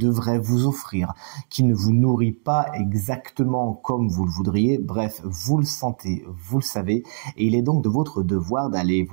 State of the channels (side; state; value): left; silent; digital silence